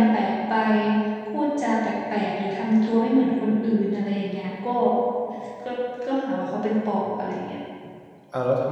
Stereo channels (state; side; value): identical; both; correlation 1.00